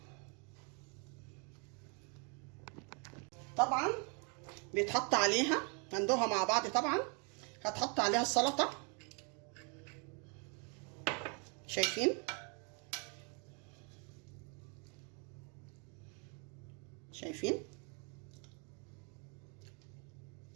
طبعا بيتحط عليها، هندوها مع بعض. طبعا هتحط عليها السلطه. شايفين، شايفين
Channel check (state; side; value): quieter; left; 35.5 dB